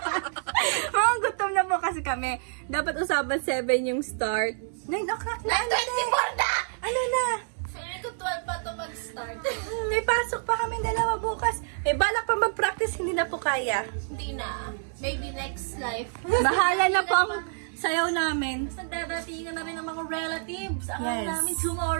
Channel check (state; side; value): silent; left; digital silence